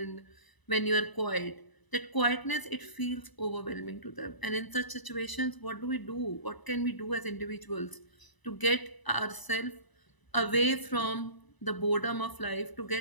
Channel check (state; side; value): late; right; 1.0 ms